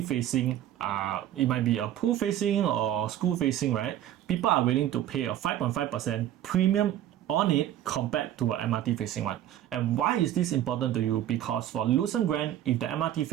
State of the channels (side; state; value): left; quieter; 12.0 dB